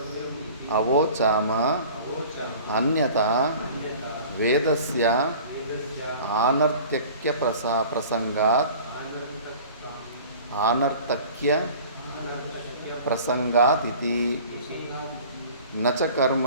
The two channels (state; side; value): inverted; both; correlation -0.44